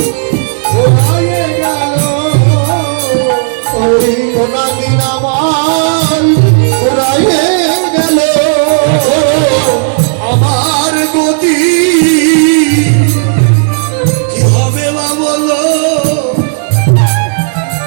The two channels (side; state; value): left; silent; digital silence